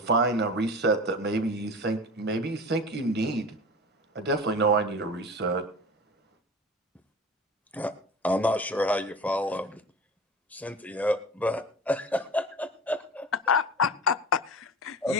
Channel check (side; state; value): both; normal; correlation 0.35